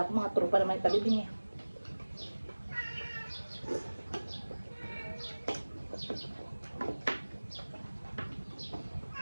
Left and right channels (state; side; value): inverted; both; correlation -1.00